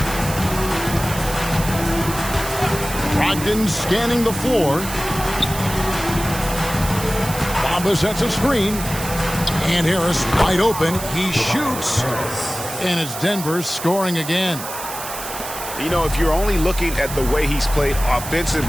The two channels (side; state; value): right; noise; hiss, 9 dB below the sound